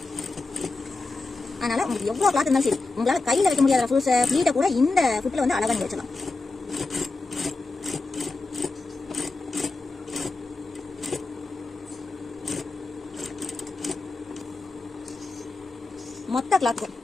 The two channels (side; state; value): right; quieter; 3.5 dB